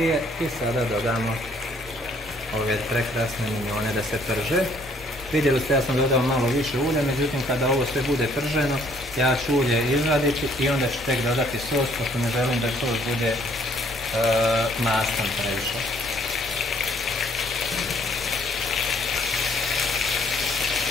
i sada dodamo ove prekrasne minjone da se prže. Vidjeli ste, ja sam dodao malo više ulja, međutim kada ovo sve bude prženo, ja ću ulje izvaditi i onda ću tek dodati sos, pošto ne želim da sos bude mastan previše.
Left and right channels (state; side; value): normal; both; correlation 0.63